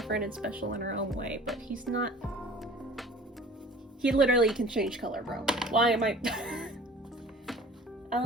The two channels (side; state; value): both; normal; correlation 0.45